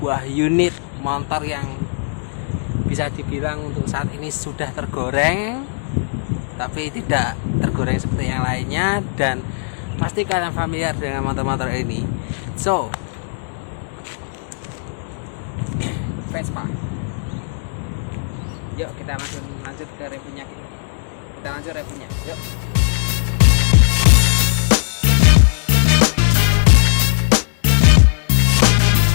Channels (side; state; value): right; silent; digital silence